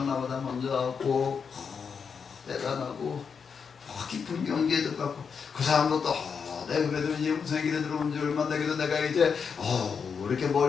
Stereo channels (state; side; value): quieter; right; 6.2 dB